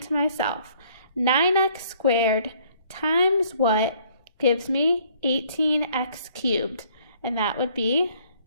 to myself, 9x squared times what gives me 18x cubed? And that would be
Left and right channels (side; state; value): both; inverted; correlation -0.61